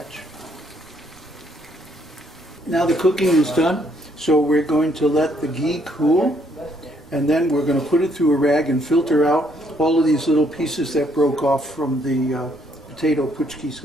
Now the cooking is done, so we're going to let the ghee cool, and then we're going to put it through a rag and filter out all of these little pieces that broke off from the potato puchkis,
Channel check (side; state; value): right; noise; rumble, 28 dB below the sound